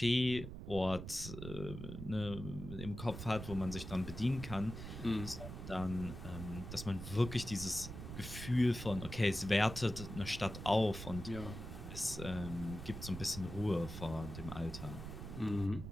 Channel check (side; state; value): right; noise; rumble, 9 dB below the sound